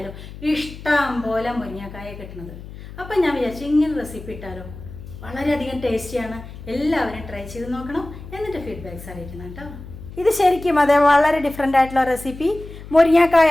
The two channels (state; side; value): noise; left; hum, 14 dB below the sound